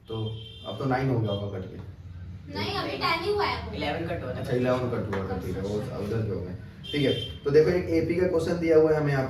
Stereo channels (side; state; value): both; identical; correlation 1.00